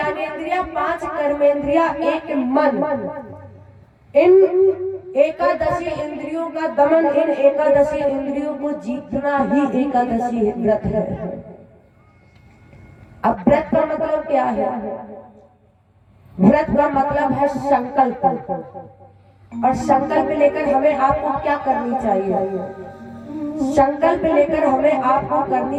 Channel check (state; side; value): identical; both; correlation 1.00